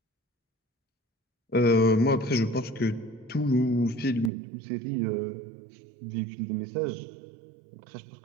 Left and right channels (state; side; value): drops out; left; at 4.3 s